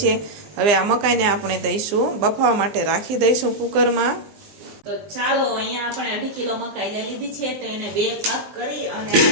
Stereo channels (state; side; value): late; left; 19 ms